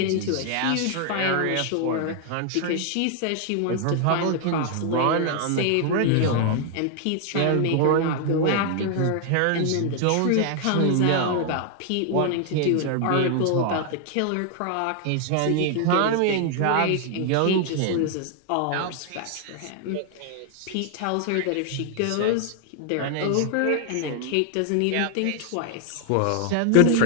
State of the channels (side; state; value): both; different; correlation 0.00